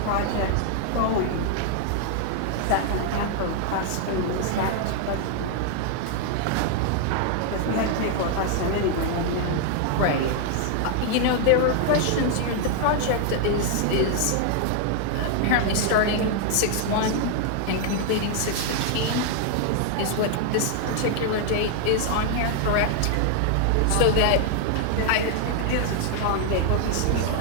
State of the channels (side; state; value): both; different; correlation 0.00